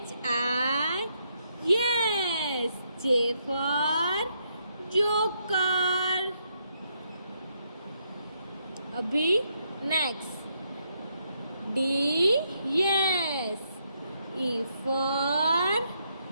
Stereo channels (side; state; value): both; inverted; correlation -0.76